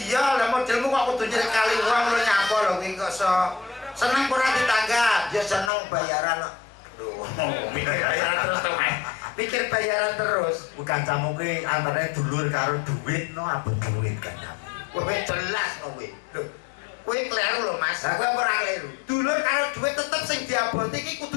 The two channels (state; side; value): drops out; right; at 5.7 s